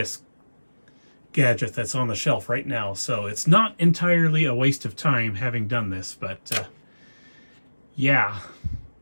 gadget that's on the shelf right now. So it's not entirely a waste of time having done this, but yeah,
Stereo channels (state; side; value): inverted; both; correlation -1.00